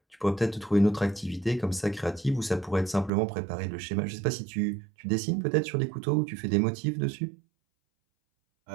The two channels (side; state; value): left; drops out; at 3.1 s